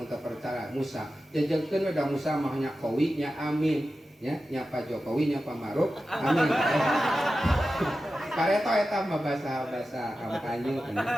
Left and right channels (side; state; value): both; normal; correlation 0.93